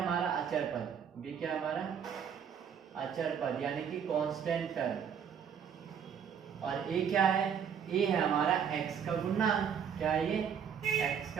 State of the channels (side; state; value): left; quieter; 7.7 dB